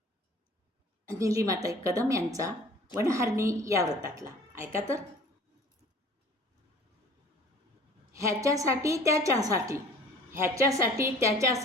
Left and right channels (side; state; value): both; normal; correlation 0.49